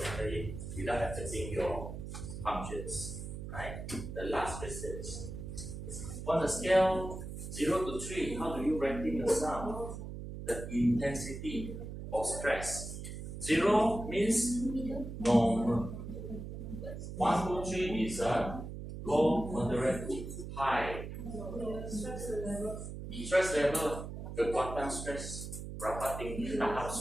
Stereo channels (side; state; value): right; noise; hum, 8 dB below the sound